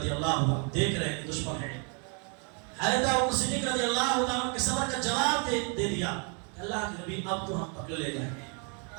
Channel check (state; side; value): quieter; left; 37.9 dB